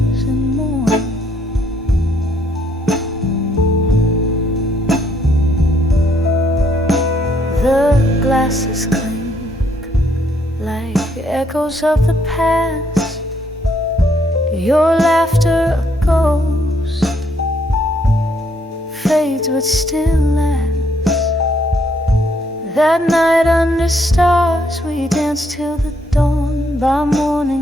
and mourns. The glasses clink like echoes of the past. Your laughter a ghost fades but still lasts. That night under stars we danced till the dawn. By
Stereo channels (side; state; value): both; normal; correlation 0.70